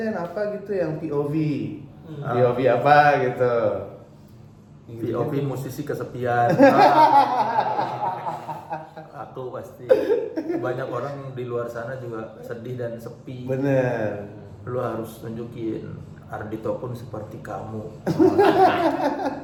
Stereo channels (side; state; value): both; identical; correlation 1.00